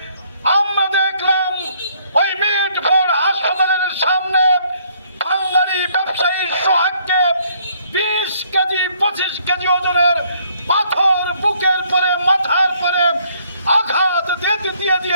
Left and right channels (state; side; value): inverted; both; correlation -0.66